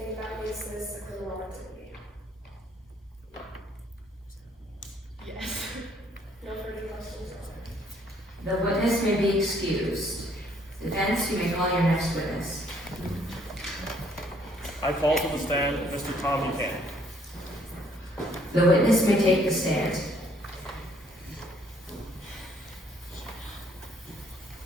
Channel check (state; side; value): normal; both; correlation 0.64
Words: that makes this a criminal activity? Yes. No further questions, Your Honor. The witness may be excused. Defense, you may call your next witness. I call to the stand Mr. Tom Buchanan. The witness may take the stand.